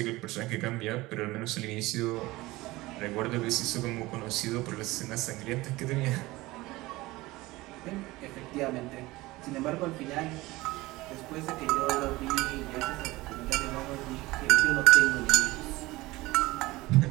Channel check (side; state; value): left; quieter; 19.9 dB